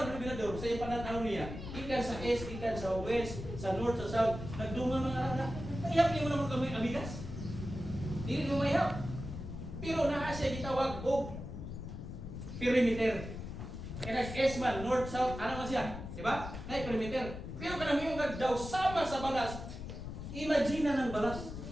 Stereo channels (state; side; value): noise; left; rumble, 8 dB below the sound